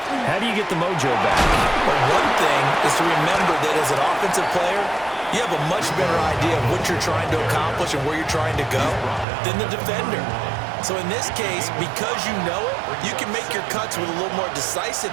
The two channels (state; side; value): drops out; left; at 9.2 s